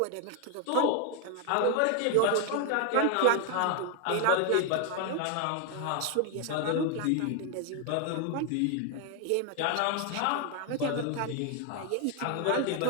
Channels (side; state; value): both; different; correlation 0.01